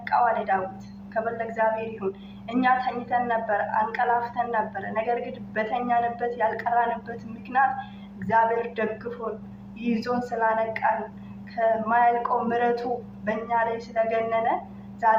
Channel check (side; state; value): both; identical; correlation 1.00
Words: አለ ዳዊት። ክብር ለእግዚአብሔር ይሁን። እኛ ተኝተን ነበር፣ አንቀላፍተን ነበር። ነገር ግን በተኛንበት ያልቀራንበት ምክንያት እግዚአብሔር ደግፎን ይዞን ስላነቃን ከማያልቀው ምሕረቱ በእኛ ላይ ስለገነነ